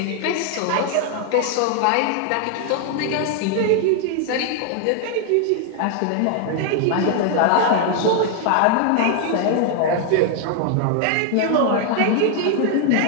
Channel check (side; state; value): both; different; correlation 0.00